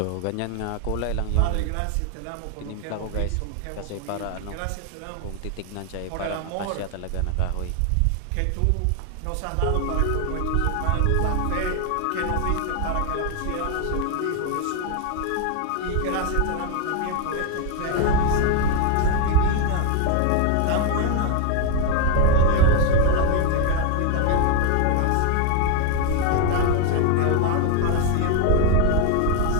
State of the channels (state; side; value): different; both; correlation 0.01